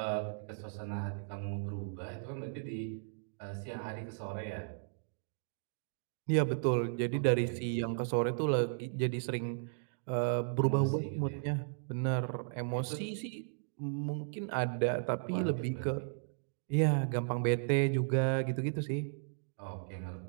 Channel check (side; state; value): left; silent; digital silence